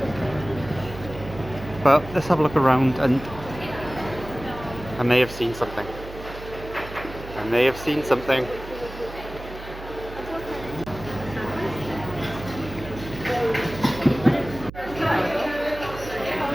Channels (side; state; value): right; noise; hum, 13 dB below the sound